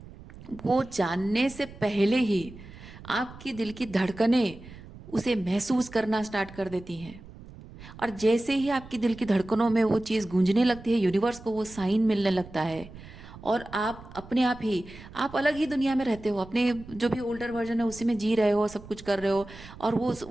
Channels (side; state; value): right; noise; rumble, 17 dB below the sound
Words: वो जानने से पहले ही आपकी दिल की धड़कनें उसे महसूस करना स्टार्ट कर देती हैं। और जैसे ही आपकी दिल की धड़कनों में वो चीज़ गूंजने लगती है, यूनिवर्स को वो साइन मिलने लगता है, और आप अपने आप ही, आप अलग ही दुनिया में रहते हो, अपने जो भी ओल्डर वर्जन है उसी में जी रहे हो, सब कुछ कर रहे हो, और